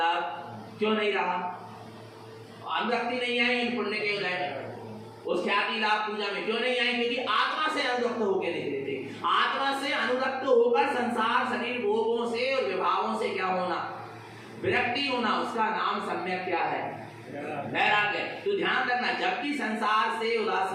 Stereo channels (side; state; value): both; identical; correlation 1.00